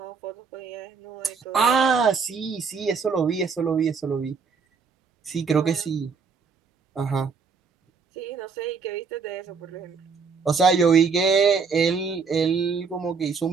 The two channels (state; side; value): quieter; left; 5.4 dB